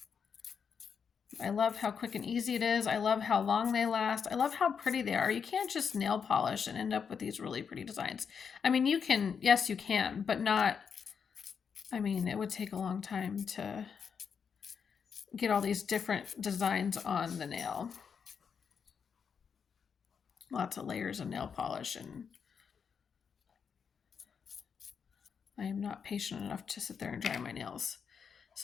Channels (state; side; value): quieter; right; 6.6 dB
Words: I love how quick and easy it is. I love how long they last. I love how pretty they are. You can't just nail polish and end up with these really pretty designs. I mean, you can, yes, you can, but not, I mean, it would take a long time to get all these different designs on the nail. Lots of layers of nail polish, and I am not patient enough to sit there and dry my nails.